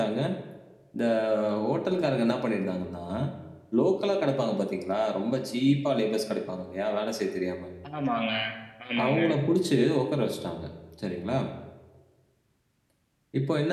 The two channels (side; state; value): both; identical; correlation 1.00